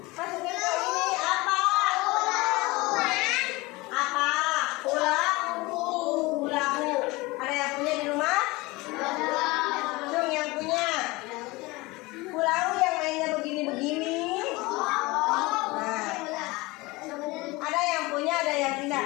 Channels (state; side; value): quieter; right; 22.5 dB